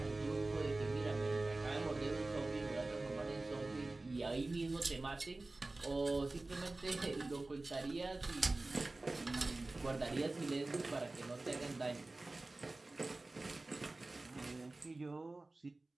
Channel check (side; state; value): left; quieter; 3.1 dB